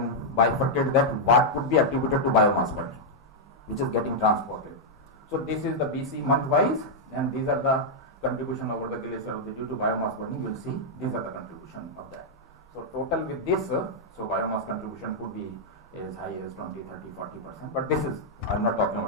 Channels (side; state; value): both; normal; correlation -0.04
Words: bifurcate that what could be attributed to biomass burning, which is getting transported. So this is the BC month wise, and these are the contribution over the glacier due to biomass burning. You will see these are the contribution of that. So total with this, so biomass contribution could be as high as 20, 30, 40%. But this is, I am not talking